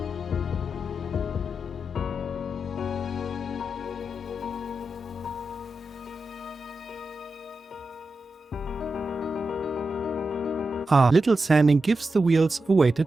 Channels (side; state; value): both; normal; correlation 0.90